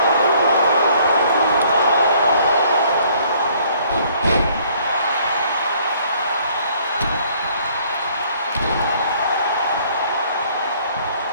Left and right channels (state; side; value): inverted; both; correlation -0.61